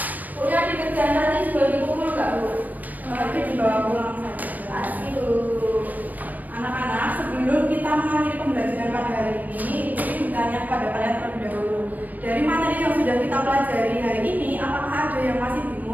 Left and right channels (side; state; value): left; late; 0.081 ms